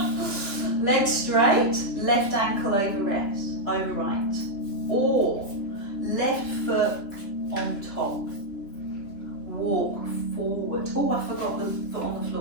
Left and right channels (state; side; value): late; right; 3.5 ms